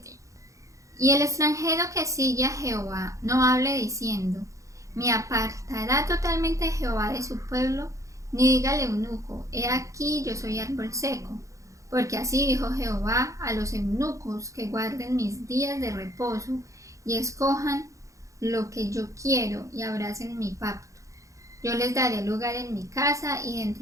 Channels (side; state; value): left; late; 0.15 ms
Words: Y el extranjero que sigue a Jehová no hable diciendo: me apartará totalmente Jehová de su pueblo, ni diga al eunuco: he aquí yo soy árbol seco. Porque así dijo Jehová a los eunucos que guarden mis días de reposo y escojan lo que yo quiero y abracen mi pacto. Yo les daré lugar en mi casa y